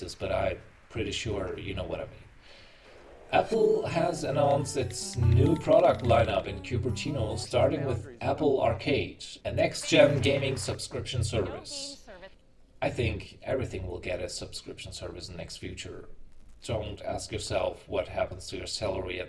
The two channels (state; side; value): identical; both; correlation 1.00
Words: but I'm pretty sure you know what I mean. Apple has announced its new product lineup in Cupertino, starting with Apple Arcade, a next-gen gaming subscription service. I think everything will get a subscription service in the next future. Don't ask yourself what happens to your salary